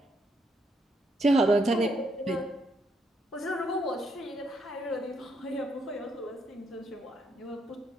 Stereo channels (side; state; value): both; normal; correlation 0.75